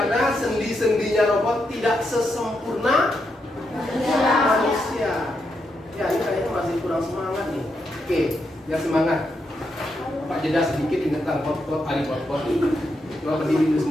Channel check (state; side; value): normal; both; correlation 0.82